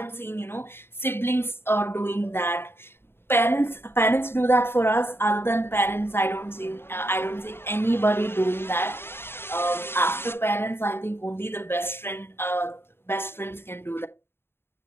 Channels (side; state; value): right; late; 0.11 ms